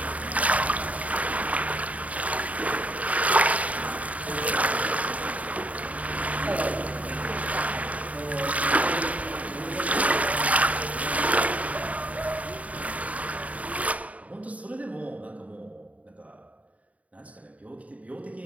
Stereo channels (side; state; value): left; late; 0.069 ms